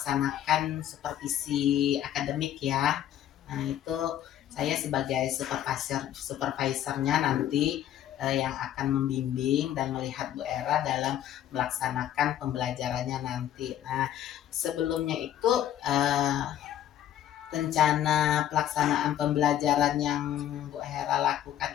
supervisi akademik ya. Nah itu saya sebagai supervisornya nanti yang akan membimbing dan melihat Bu Era dalam melaksanakan pembelajarannya nanti. Nah sebelumnya itu rencana pelaksanaan pembelajaran yang Bu Hera lakukan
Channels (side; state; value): right; quieter; 11.4 dB